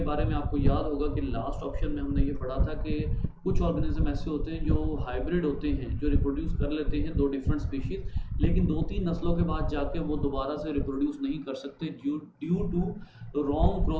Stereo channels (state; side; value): identical; both; correlation 1.00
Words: बारे में आपको याद होगा कि लास्ट ऑप्शन में हमने ये पढ़ा था कि कुछ ऑर्गेनिज्म ऐसे होते हैं जो हाइब्रिड होते हैं, जो रिप्रोड्यूस कर लेते हैं दो डिफरेंट स्पीशीज, लेकिन 2-3 नस्लों के बाद जाके वो दोबारा से रिप्रोड्यूस नहीं कर सकते due to wrong